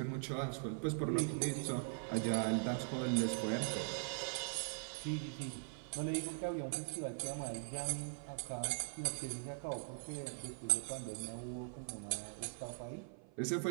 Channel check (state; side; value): silent; left; 50 dB below the other